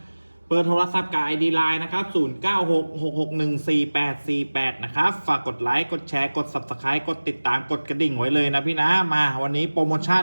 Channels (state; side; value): inverted; both; correlation -1.00